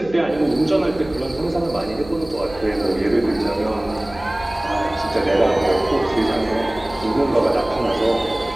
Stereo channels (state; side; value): noise; right; hum, 18 dB below the sound